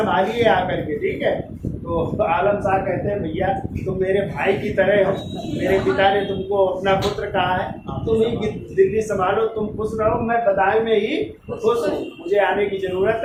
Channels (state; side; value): identical; both; correlation 1.00